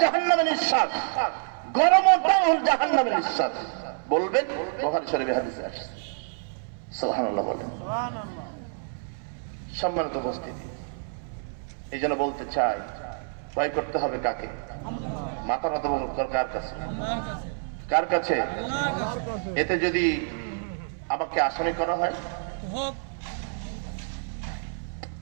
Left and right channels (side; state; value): left; silent; 60 dB below the other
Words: জাহান্নামের নিঃশ্বাস, গরমটাও জাহান্নামের নিঃশ্বাস। বলবেন বুখারী শরীফে হাদিসে আসছে। সুবহানাল্লাহ বলেন। সম্মানিত উপস্থিতি, এই জন্য বলতে চাই, ভয় করতে হবে কাকে? মাথা নত কার কাছে? কার কাছে? এতে যদি আমাকে আসামি করা হয়,